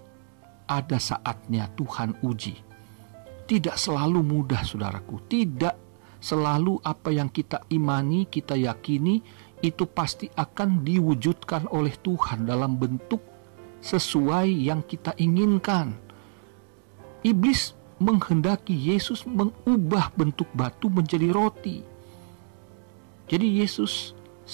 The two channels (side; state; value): left; silent; digital silence